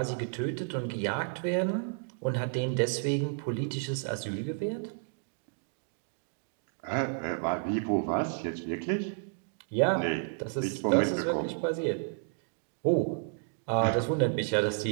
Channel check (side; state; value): left; silent; digital silence